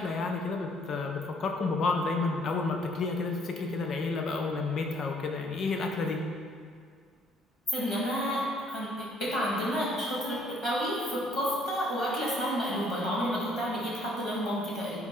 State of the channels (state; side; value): normal; both; correlation 0.63